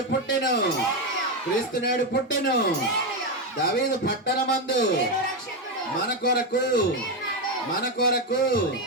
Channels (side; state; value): both; normal; correlation 0.08